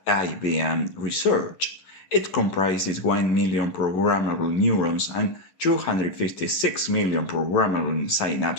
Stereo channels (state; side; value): late; right; 11 ms